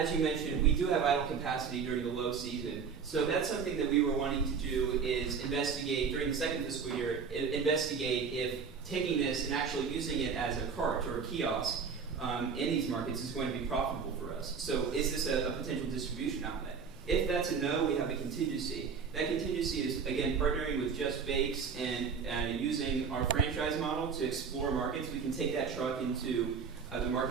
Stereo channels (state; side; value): quieter; left; 6.0 dB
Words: you mentioned, we do have idle capacity during the low season. So that's something that we were wanting to do is investigate during the second fiscal year, investigate if taking this and actually using it as a cart or a kiosk in these markets is going to be profitable for us. So is this a potential distribution outlet? If that's a no, we have a contingency. That contingency is, again, partnering with Just Bakes and using our franchise model to explore markets. We can take that truck into the